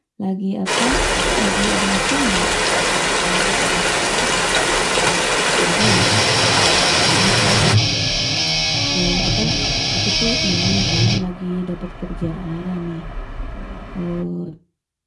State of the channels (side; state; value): both; identical; correlation 1.00